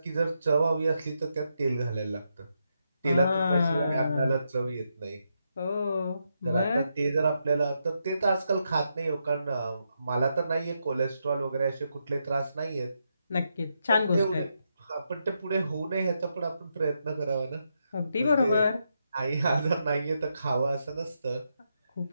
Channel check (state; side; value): inverted; both; correlation -0.82